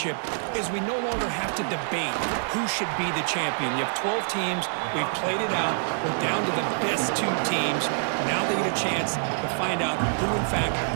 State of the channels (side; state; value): left; silent; digital silence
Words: is we no longer have to debate who should be the champion. You have 12 teams. We've played it out. We're down to the best two teams. Now they get a chance to find out who, in fact,